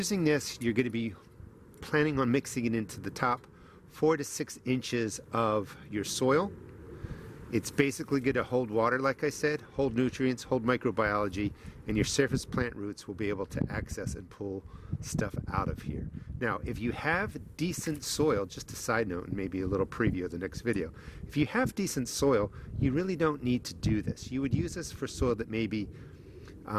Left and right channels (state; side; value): identical; both; correlation 1.00